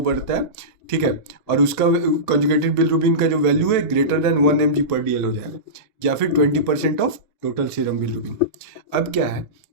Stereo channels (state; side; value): normal; both; correlation -0.19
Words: बढ़ता है, ठीक है, और उसका कंजुगेटेड बिलिरुबिन का जो वैल्यू है ग्रेटर देन 1 mg/dl हो जाएगा, या फिर 20% ऑफ टोटल सीरम बिलिरुबिन। अब क्या है